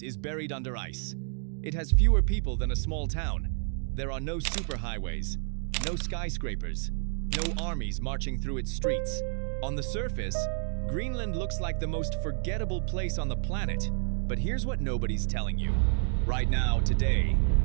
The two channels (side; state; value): left; silent; 58 dB below the other